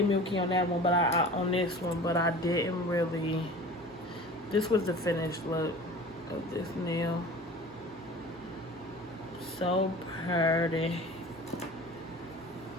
milky on that one, but on this one, but I didn't really. This was the finished look of this nail. So pretty.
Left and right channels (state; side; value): normal; both; correlation 0.39